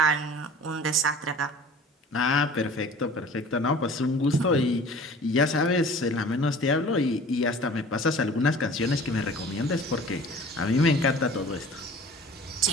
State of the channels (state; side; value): normal; both; correlation 0.45